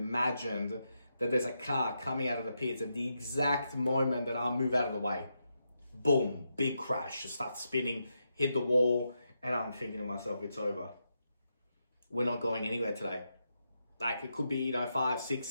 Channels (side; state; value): both; inverted; correlation -0.84